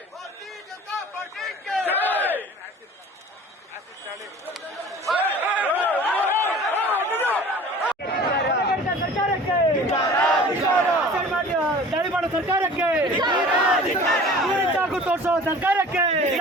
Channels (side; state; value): both; normal; correlation 0.44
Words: ದಾಳಿ ಮಾಡೋ ಸರ್ಕಾರಕ್ಕೆ ದೂರಿ ಚಾಕು ತೋರಿಸೋ ಸರ್ಕಾರಕ್ಕೆ